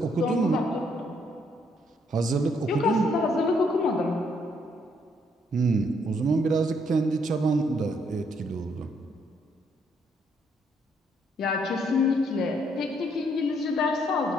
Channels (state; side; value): normal; both; correlation 0.71